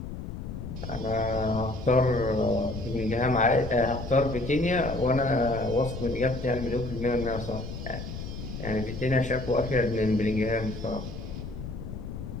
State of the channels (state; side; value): noise; left; rumble, 8 dB below the sound